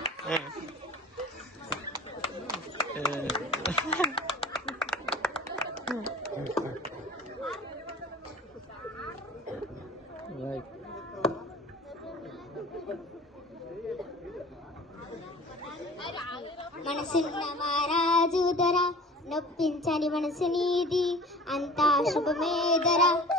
మనసున్న మహారాజు ధర, నొప్పించని మనసు నీది, అంతా శుభమేధర.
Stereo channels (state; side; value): normal; both; correlation 0.42